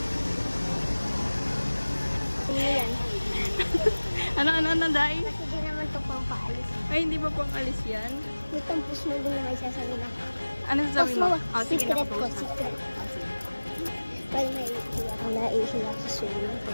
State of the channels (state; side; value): inverted; both; correlation -1.00